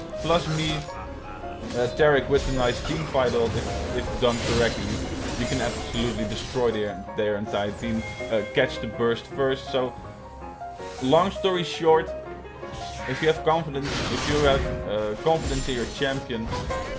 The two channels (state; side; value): identical; both; correlation 1.00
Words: plus me, Taric with a nice team fight ult, if done correctly. You can absolutely destroy their entire team, catch the burst first. So, long story short, if you have confidence, confidence in your champion,